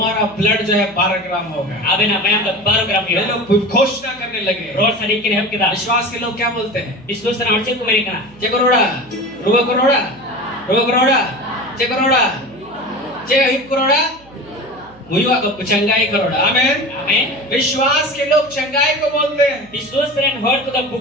ब्लड जो है 12 ग्राम होगा अबे ना मैं 12 ग्राम ये लोग घोषणा करने लगे रोड सड़ी के हम किदा विश्वास के लोग क्या बोलते हैं विश्वास से आंचे को मेरे का चे करोड़ा रुबा करोड़ा चे करोड़ा चे हिप करोड़ा मुयुआ को चंगाई करोड़ा आमेन आमेन विश्वास के लोग चंगाई को बोलते हैं विश्वास से हर तो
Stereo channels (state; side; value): noise; right; hum, 26 dB below the sound